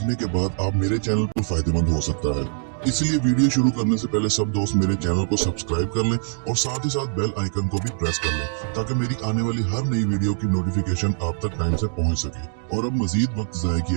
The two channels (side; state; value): left; silent; digital silence